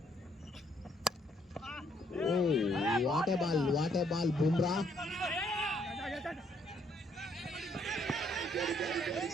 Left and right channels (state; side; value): normal; both; correlation 0.69